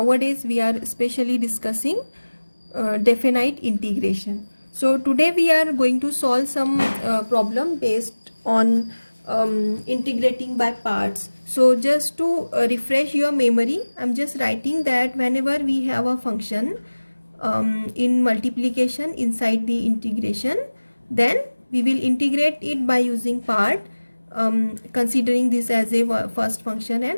we are especially discussing definite integration. So today we are going to solve some problem based on integrating by parts. So just to refresh your memory, I'm just writing that whenever we have a function in multiplication inside the integration, then we will integrate it by using part, considering this as a first function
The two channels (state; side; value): inverted; both; correlation -1.00